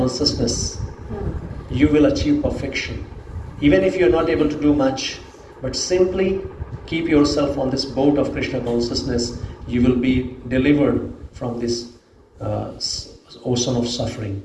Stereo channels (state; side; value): identical; both; correlation 1.00